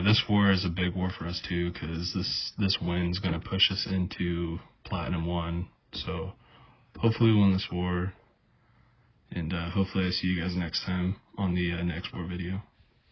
this war is a big war for us too, because this win's going to push us into Platinum 1. So, hopefully we win this war. And hopefully I see you guys next time on the next war video.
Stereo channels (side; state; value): both; identical; correlation 1.00